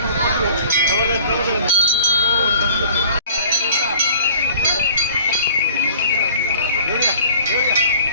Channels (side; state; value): both; inverted; correlation -0.48